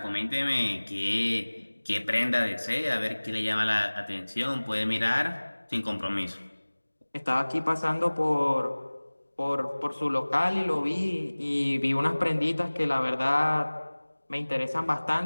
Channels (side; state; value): both; inverted; correlation -1.00